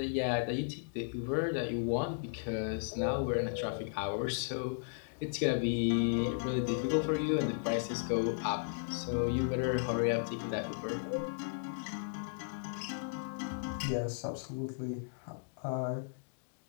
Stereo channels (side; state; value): right; silent; digital silence